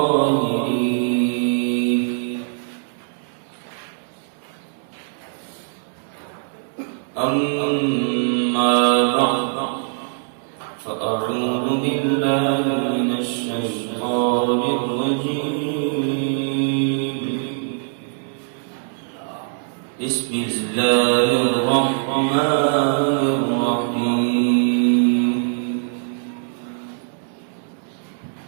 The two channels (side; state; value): left; silent; digital silence